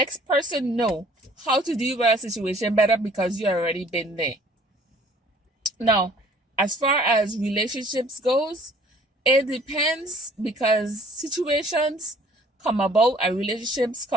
person know how to deal with a situation better because you already been there. Now, as far as relationships goes, it depends because situations come about and relationships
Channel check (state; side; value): normal; both; correlation 0.55